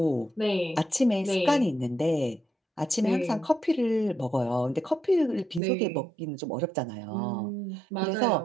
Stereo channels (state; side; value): drops out; left; at 5.6 s